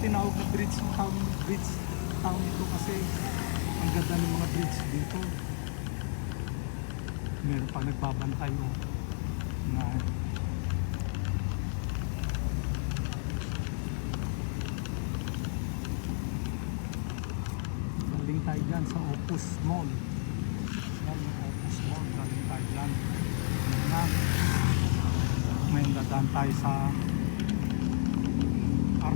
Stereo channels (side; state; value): right; silent; 57 dB below the other